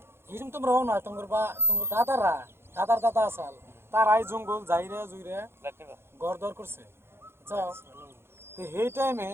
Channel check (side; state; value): left; late; 0.12 ms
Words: হিসুম তোমরা হও না তোমার দাদারা দাদার দাদা আসাল তারাই জঙ্গল যাইরে জুইরে ঘর দর করছে যাও তো সেই টাইমে